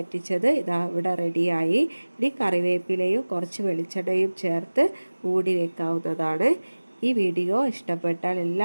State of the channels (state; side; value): inverted; both; correlation -1.00